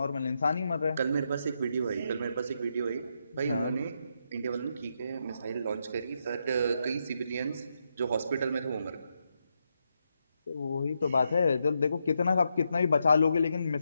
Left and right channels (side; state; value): both; inverted; correlation -0.82